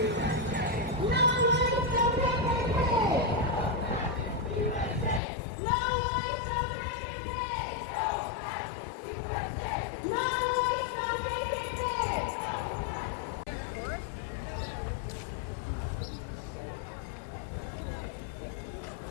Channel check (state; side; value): drops out; right; at 5.2 s